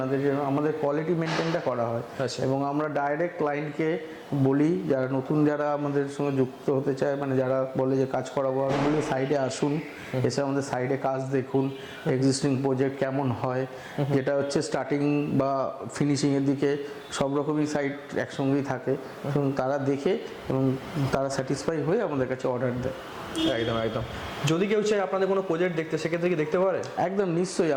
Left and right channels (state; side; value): identical; both; correlation 1.00